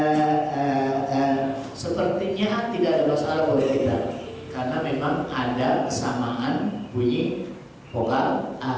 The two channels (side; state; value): both; identical; correlation 1.00